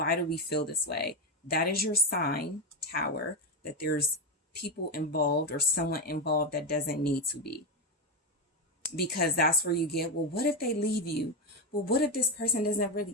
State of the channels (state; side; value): normal; both; correlation 0.10